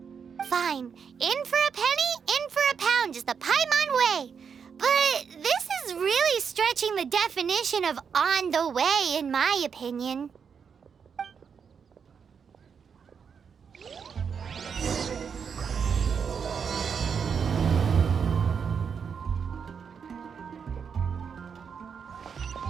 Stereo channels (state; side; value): quieter; left; 6.6 dB